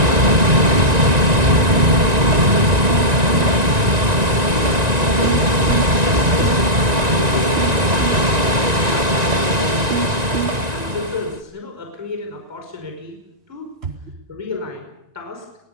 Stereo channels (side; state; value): left; late; 1.9 ms